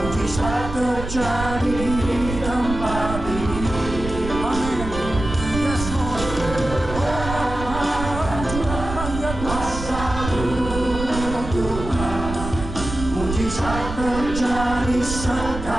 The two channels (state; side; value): noise; right; rumble, 7 dB below the sound